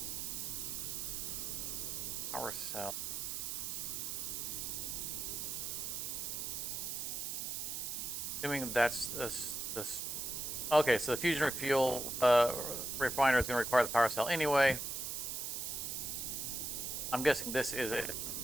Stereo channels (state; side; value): noise; right; hiss, 3 dB below the sound